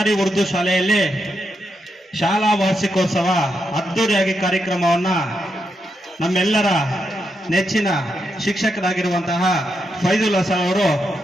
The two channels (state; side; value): normal; both; correlation 0.83